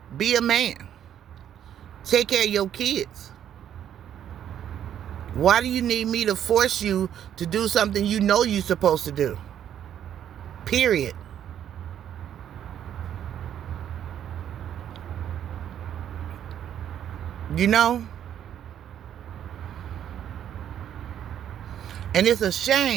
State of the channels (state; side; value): quieter; left; 10.0 dB